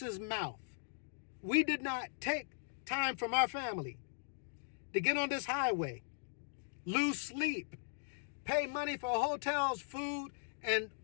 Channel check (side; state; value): right; silent; digital silence